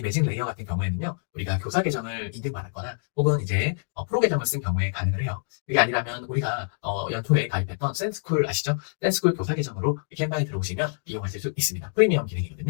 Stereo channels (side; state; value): right; silent; digital silence